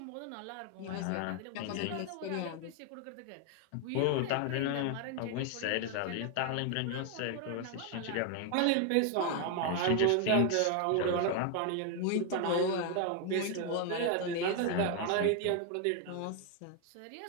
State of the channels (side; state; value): both; different; correlation 0.00